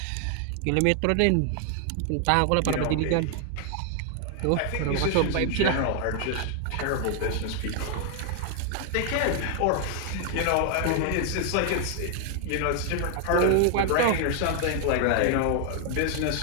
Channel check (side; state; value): both; different; correlation 0.00